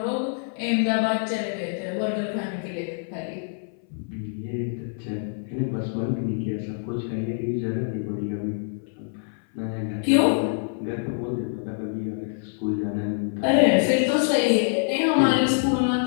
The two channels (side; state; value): right; silent; 60 dB below the other